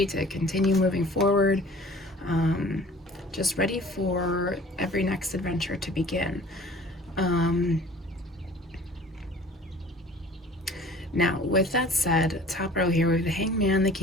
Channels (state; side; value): normal; both; correlation 0.48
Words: to continue moving forward. Just ready for every next adventure to begin. Now, with that said, top row here, we have the Hangman, the